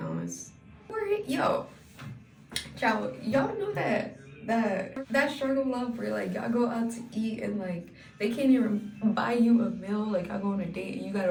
Yo, child, y'all know that struggle love where like y'all go out to eat and like they can't even buy you a meal. Like, I go on a date and you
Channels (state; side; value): identical; both; correlation 1.00